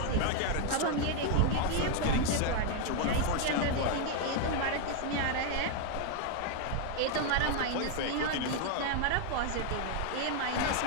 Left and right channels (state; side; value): different; both; correlation 0.01